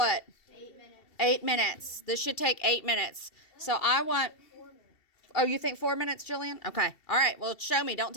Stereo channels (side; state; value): right; late; 2.7 ms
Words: 8 minutes. 8 minutes. This should take 8 minutes. So I want... 4 minutes. Oh, you think 4 minutes, Jillian? Okay. All right. Well, show me. Don't